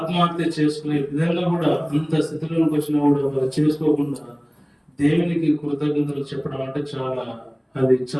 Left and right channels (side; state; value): both; identical; correlation 1.00